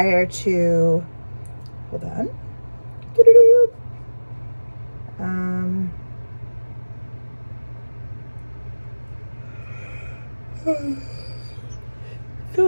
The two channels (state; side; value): inverted; both; correlation -1.00